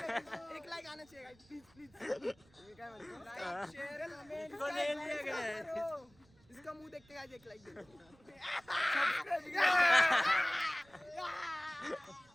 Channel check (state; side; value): noise; right; rumble, 29 dB below the sound